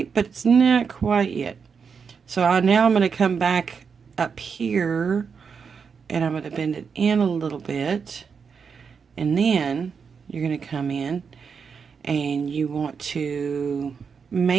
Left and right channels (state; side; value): quieter; left; 6.0 dB